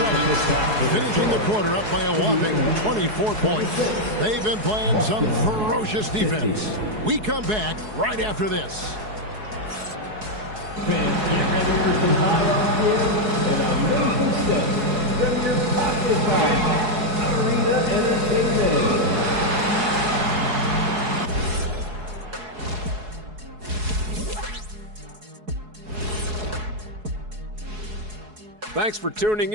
finishing the quarter up by a whopping 24 points. They've been playing some ferocious defense. We come back right after this. Fans, get ready for some high gear and amazing stuff from your pocket Arena Entertainment. Thanks for tuning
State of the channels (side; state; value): left; late; 4.7 ms